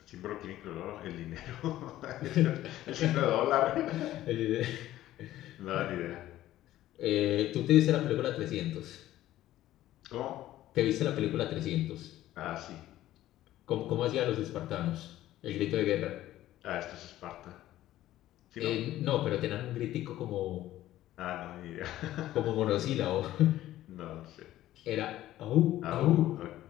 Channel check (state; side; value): quieter; right; 14.2 dB